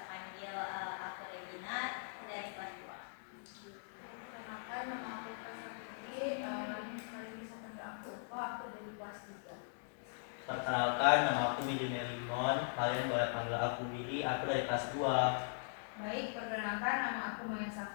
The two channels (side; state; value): right; silent; digital silence